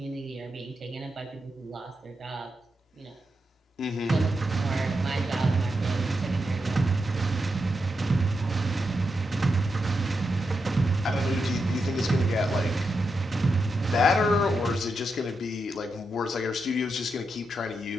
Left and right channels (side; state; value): both; normal; correlation 0.85